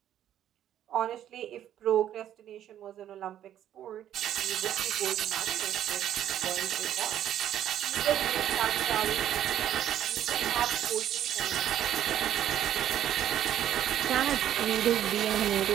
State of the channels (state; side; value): quieter; left; 11.1 dB